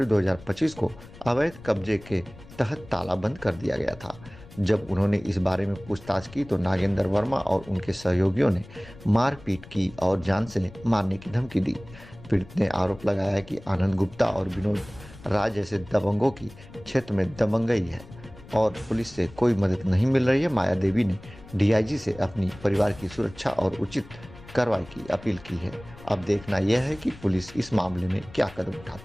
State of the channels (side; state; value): left; noise; rumble, 19 dB below the sound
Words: 2025 को अवैध कब्जे के तहत ताला बंद कर दिया गया था। जब उन्होंने इस बारे में पूछताछ की तो नागेंद्र वर्मा और उनके सहयोगियों ने मारपीट की और जान से मारने की धमकी दी। पीड़ित ने आरोप लगाया कि आनंद गुप्ता और विनोद राय जैसे दबंगों की क्षेत्र में दबंगई है और पुलिस से कोई मदद नहीं मिल रही है। माया देवी ने डीआईजी से अपनी परिवार की सुरक्षा और उचित कार्रवाई की अपील की है। अब देखना यह है कि पुलिस इस मामले में क्या कदम